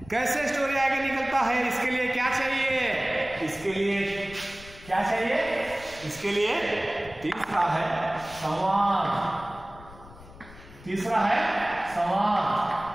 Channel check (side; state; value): left; noise; rumble, 19 dB below the sound